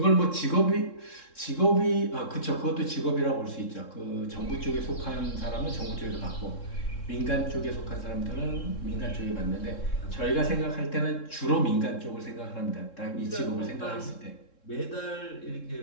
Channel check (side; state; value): right; late; 3.7 ms